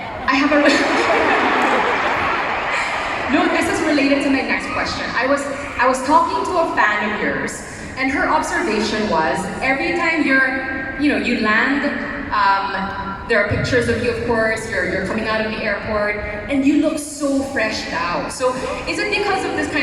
I have a... No, this is related to my next question. I was talking to a fan of yours, and her observation was every time you land, there are pictures of you, of course. You're coming out of the airport, and you look so fresh out. So, is it because of this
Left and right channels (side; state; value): both; identical; correlation 1.00